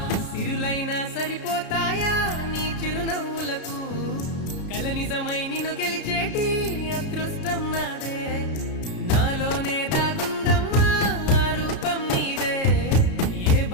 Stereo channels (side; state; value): right; late; 33 ms